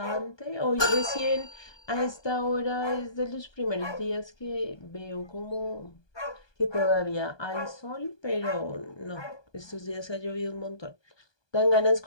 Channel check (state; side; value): late; right; 1.2 ms